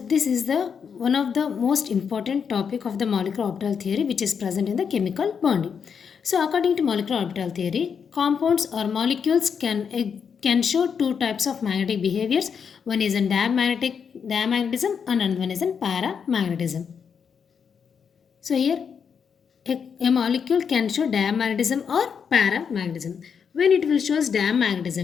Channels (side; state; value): right; quieter; 6.7 dB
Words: is the one of the most important topic of the molecular orbital theory which is present in the chemical bonding. So according to molecular orbital theory, compounds or molecules can show two types of magnetic behaviors. One is in diamagnetism and another one is in paramagnetism. So here a molecule can show diamagnetism or paramagnetism. When it will show